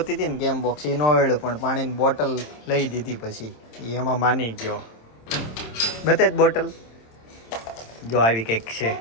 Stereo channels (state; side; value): late; right; 27 ms